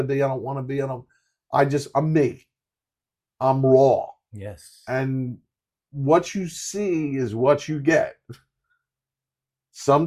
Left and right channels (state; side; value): identical; both; correlation 1.00